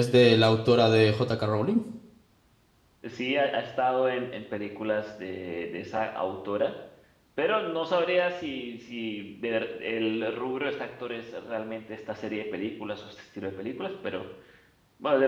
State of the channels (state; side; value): identical; both; correlation 1.00